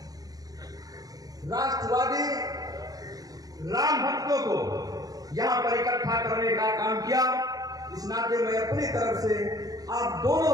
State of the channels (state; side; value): late; left; 0.18 ms